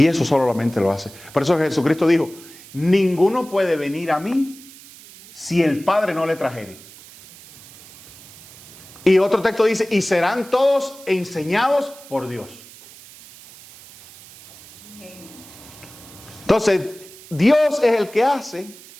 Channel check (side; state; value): right; noise; hiss, 20 dB below the sound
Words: eso solamente lo hace. Por eso Jesucristo dijo, ninguno puede venir a mí si el Padre no le trajere. Y otro texto dice, y serán todos enseñados por Dios. Entonces, Dios es el que hace